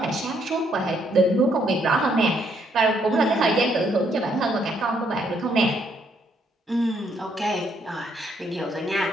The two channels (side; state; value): both; normal; correlation 0.71